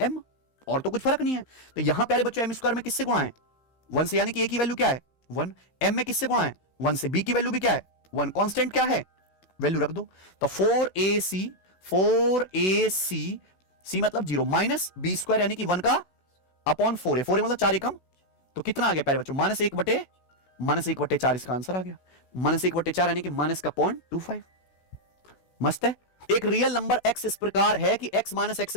m, और तो कुछ फर्क नहीं है। तो यहां पहले बच्चों m स्क्वायर में किससे गुणा है? 1 से, यानी कि a की वैल्यू क्या है? 1। m में किससे गुणा है? 1 से। b की वैल्यू भी क्या है? 1। कांस्टेंट क्या है? वैल्यू रख दो। तो 4ac c मतलब 0 माइनस b स्क्वायर यानी कि 1 का अपॉन 4 है, 4 मतलब 4 एकम, तो कितना आ गया प्यारे बच्चों? -1/4 इसका आंसर आ गया। -1/4 यानी कि -0.25। मस्त है। एक रियल नंबर x इस प्रकार है कि x -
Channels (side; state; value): right; late; 16 ms